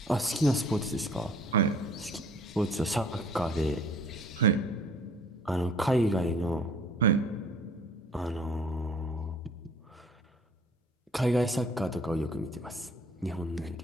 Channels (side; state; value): both; normal; correlation 0.53